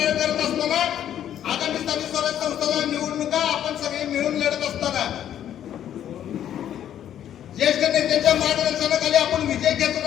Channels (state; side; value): quieter; right; 10.5 dB